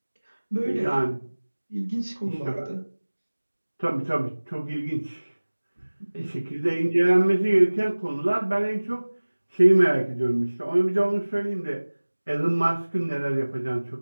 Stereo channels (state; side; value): inverted; both; correlation -1.00